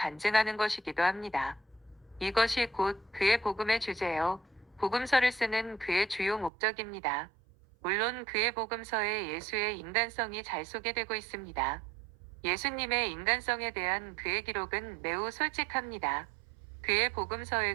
것이기도 합니다. 이것이 곧 그의 복음의 주제요. 복음서를 쓰는 그의 주요 목적입니다. 물론 그의 복음서에 예수의 인간성이 잘 소개되고 있습니다. 예수님의 인간성에 대한 그의 기록은 매우 솔직합니다. 그의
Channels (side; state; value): left; drops out; at 6.5 s